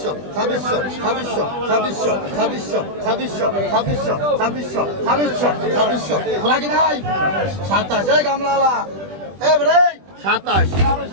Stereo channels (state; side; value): late; left; 20 ms